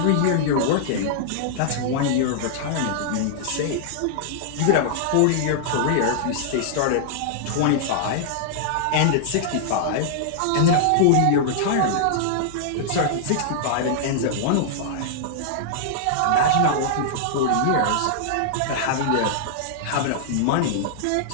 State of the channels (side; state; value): both; different; correlation -0.01